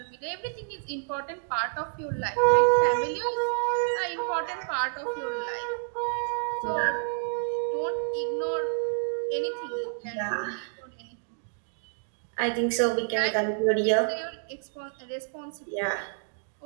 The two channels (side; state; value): left; silent; digital silence